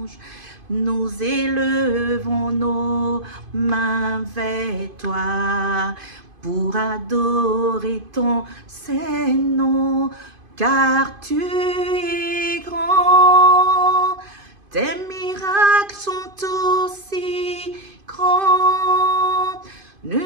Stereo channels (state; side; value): late; left; 2.5 ms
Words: Nous élevons nos mains vers toi pour adorer ton saint nom. Car tu es grand, tes miracles sont aussi grands.